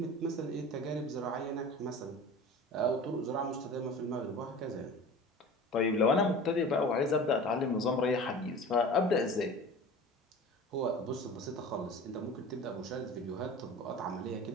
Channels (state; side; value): normal; both; correlation 0.38